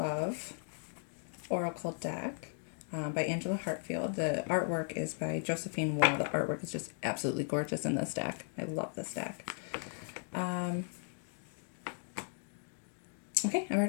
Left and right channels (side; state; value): right; silent; 53 dB below the other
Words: Oracle deck by Angela Hartfield. The artwork is by Josephine Wall. The artwork is just absolutely gorgeous in this deck. I love this deck. Okay, I've